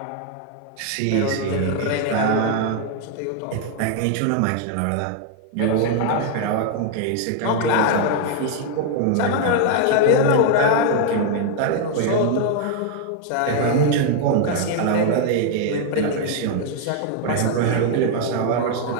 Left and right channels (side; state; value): both; different; correlation 0.00